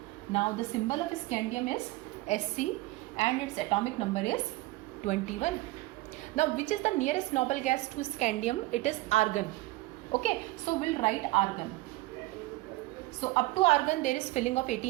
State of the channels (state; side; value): quieter; left; 19.6 dB